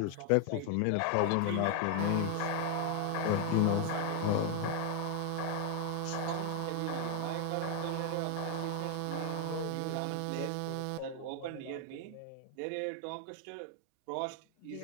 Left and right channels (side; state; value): both; different; correlation 0.00